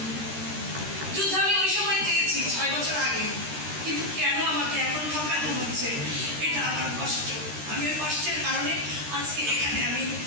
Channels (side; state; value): left; late; 13 ms